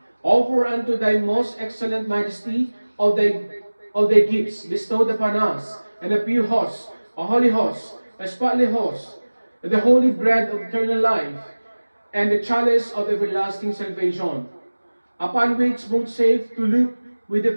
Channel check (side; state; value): both; inverted; correlation -1.00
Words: Offer unto thy most excellent majesty of thy gifts bestowed upon us, and a pure host, a holy host, a spotless host, the holy bread of eternal life, and the chalice of everlasting salvation, upon which both save to look with a